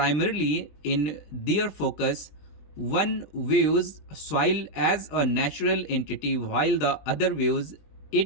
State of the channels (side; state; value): right; late; 20 ms